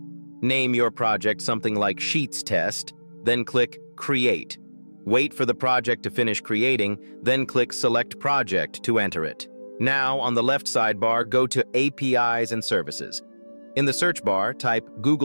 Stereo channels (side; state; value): both; inverted; correlation -1.00